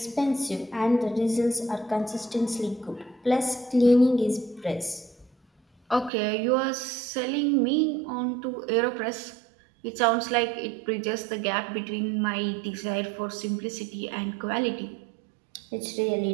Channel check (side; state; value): left; drops out; at 6.1 s